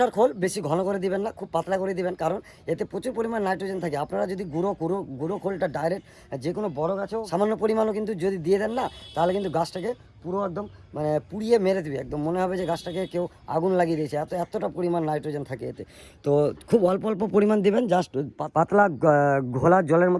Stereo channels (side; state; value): both; identical; correlation 1.00